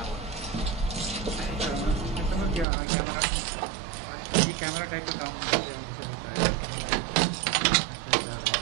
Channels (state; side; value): drops out; left; at 2.7 s